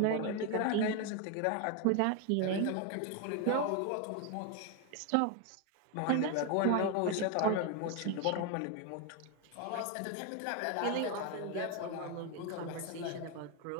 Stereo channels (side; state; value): both; different; correlation 0.01